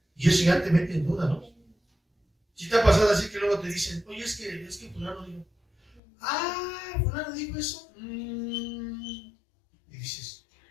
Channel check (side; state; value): right; drops out; at 6.0 s